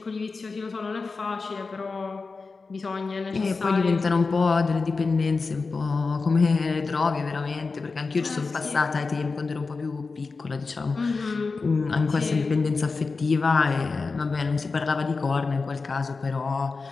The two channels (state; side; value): quieter; right; 4.2 dB